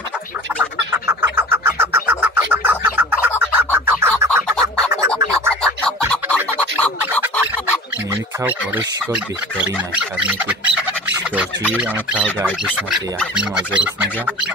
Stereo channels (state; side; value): normal; both; correlation 0.39